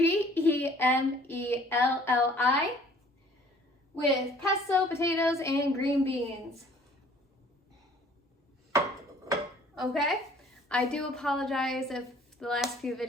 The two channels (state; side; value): normal; both; correlation 0.55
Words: with pesto, potatoes, and green beans. Okay, I do apologize if the last few